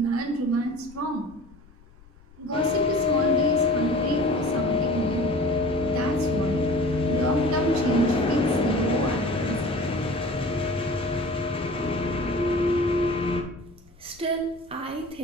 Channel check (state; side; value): noise; left; rumble, 26 dB below the sound